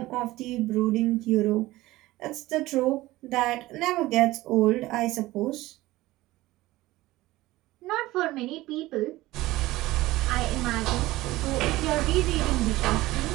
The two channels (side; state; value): left; quieter; 17.9 dB